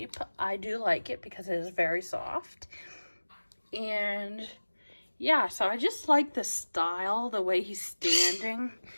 I do like it because it is very soft. And yeah, so I just like the style, the way he's standing.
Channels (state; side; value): inverted; both; correlation -1.00